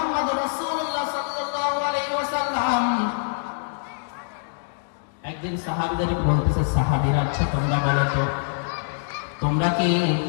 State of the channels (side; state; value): right; silent; digital silence